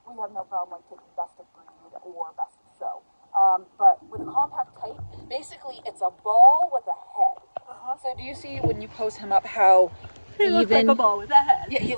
we have no problem like taking best of breed or best of show. But with a compact type, basically it's a ball with a head. So do you see when you pose him up how He looks like a ball with a head. Yeah, he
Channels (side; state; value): both; inverted; correlation -1.00